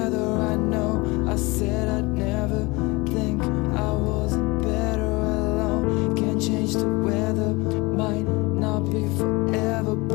I know I said I'd never think I wasn't better alone. Can't change the weather, might not be forever,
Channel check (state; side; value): quieter; right; 24.4 dB